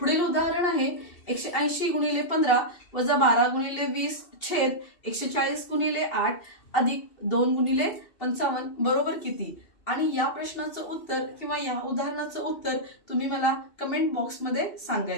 उदाहरण आहे 180 गुणिले 15 वजा 12 गुणिले 20 छेद 140 गुणिले 8 अधिक 2 गुणिले 55 बरोबर किती. आणि या प्रश्नाचं उत्तर किंवा या उदाहरणाचं उत्तर तुम्ही मला कमेंट बॉक्समध्ये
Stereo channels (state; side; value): late; right; 2.7 ms